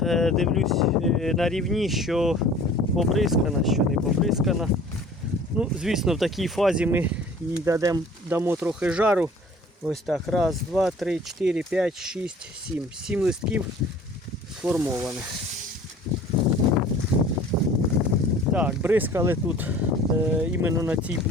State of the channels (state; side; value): normal; both; correlation 0.48